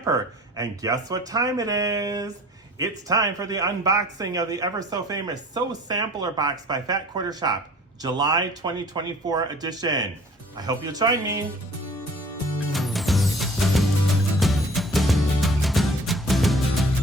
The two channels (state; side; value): normal; both; correlation 0.49